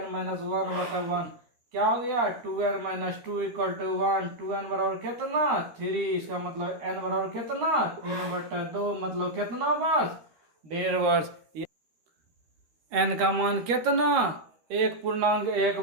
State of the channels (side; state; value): left; late; 13 ms